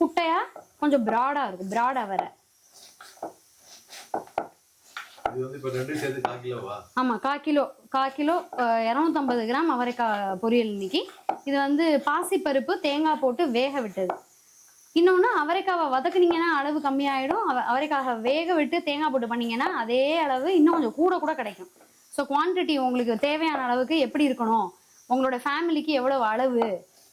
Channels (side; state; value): both; identical; correlation 1.00